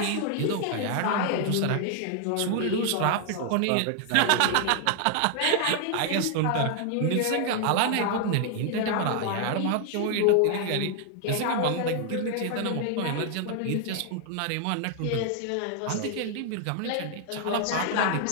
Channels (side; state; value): both; different; correlation 0.00